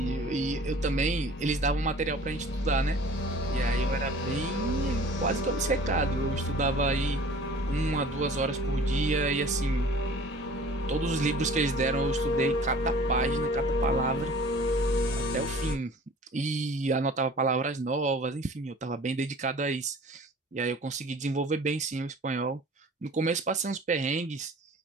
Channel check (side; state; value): both; normal; correlation 0.47